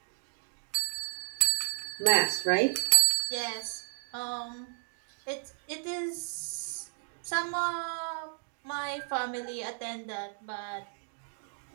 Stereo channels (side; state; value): left; silent; digital silence